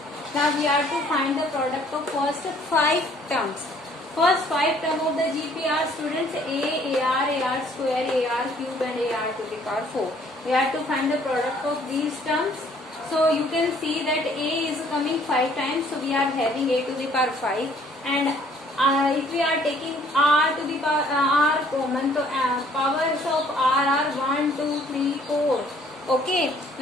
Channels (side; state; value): both; normal; correlation 0.60